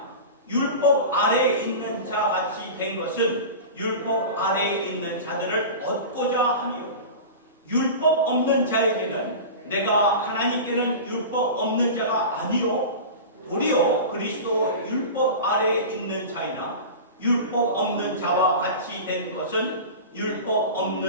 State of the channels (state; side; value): inverted; both; correlation -0.31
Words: 율법 아래에 있는 자 같이 된 것은 율법 아래에 있는 자들을 얻고자 하며 율법 없는 자에게는 내가 하나님께는 율법 없는 자가 아니요 도리어 그리스도 율법 아래에 있는 자이나 율법 없는 자와 같이 된 것은 율법